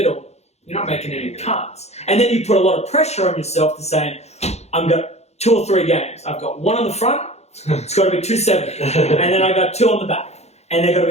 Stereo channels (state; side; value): late; right; 0.31 ms